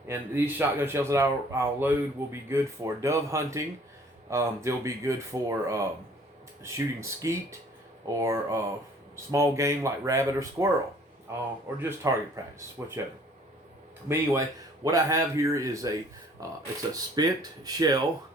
And these shotgun shells that I'll load will be good for dove hunting. They'll be good for shooting skeet or small game like rabbit or squirrel, or just target practice, whichever. But anyway, what I have here is it's a spent shell,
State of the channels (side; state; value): both; normal; correlation 0.55